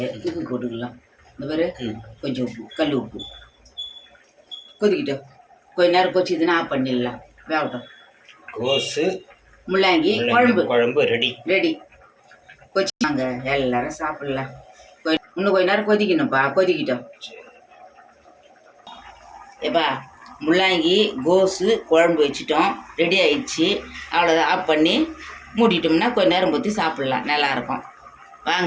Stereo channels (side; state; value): both; identical; correlation 1.00